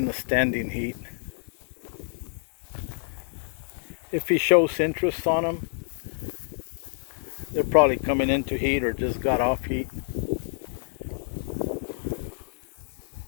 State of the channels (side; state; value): right; silent; digital silence